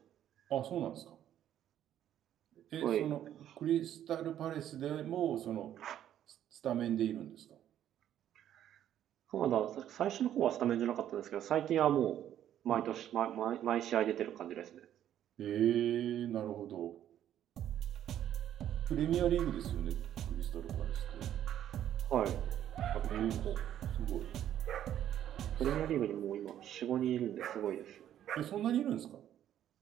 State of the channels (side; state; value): left; quieter; 11.1 dB